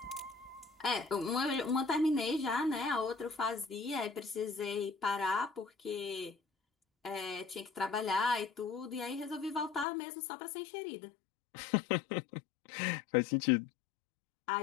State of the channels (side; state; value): right; drops out; at 9.9 s